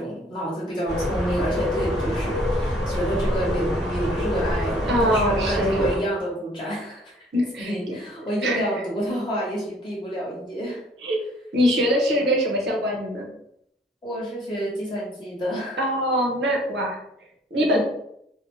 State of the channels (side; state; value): both; normal; correlation 0.57